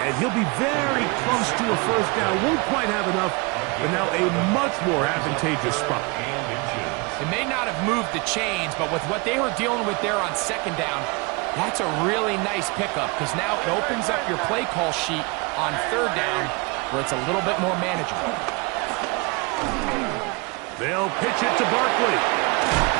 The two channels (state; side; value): quieter; left; 28.1 dB